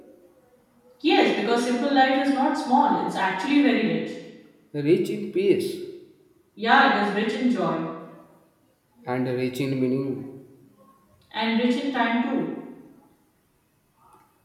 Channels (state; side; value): identical; both; correlation 1.00